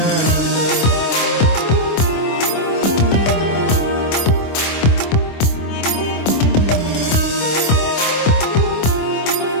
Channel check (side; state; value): right; late; 25 ms